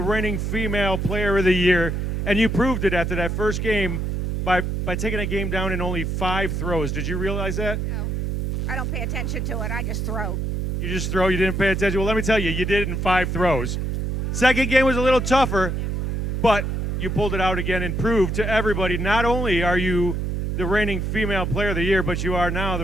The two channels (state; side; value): noise; right; hum, 1 dB below the sound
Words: female player of the year, and you proved it after that first game by taking a game down in only 5 throws. Did you realize that? No, I don't pay attention to it. I just throw. You just throw, you didn't pay attention. Well, let me tell you, you did it in 5 throws. Second game was a little tougher, but you pulled it out again and proved to everybody, not only are you the reigning female player of the year, but you are now